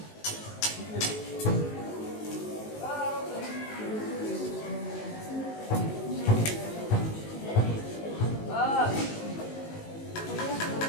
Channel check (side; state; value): right; late; 19 ms